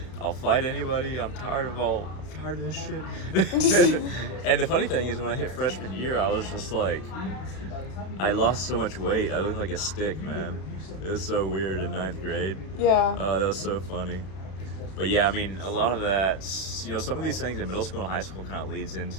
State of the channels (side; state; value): right; late; 32 ms